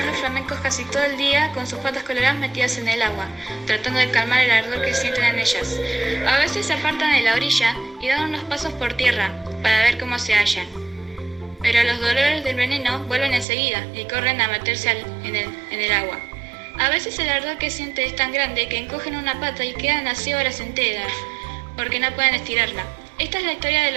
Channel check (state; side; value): drops out; left; at 13.5 s